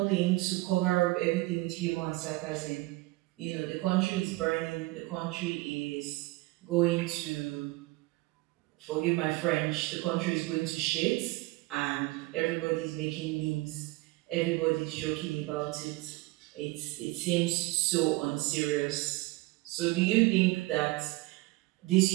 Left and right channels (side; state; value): left; quieter; 21.4 dB